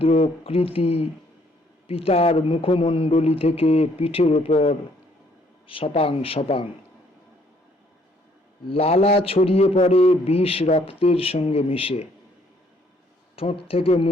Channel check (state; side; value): normal; both; correlation 0.65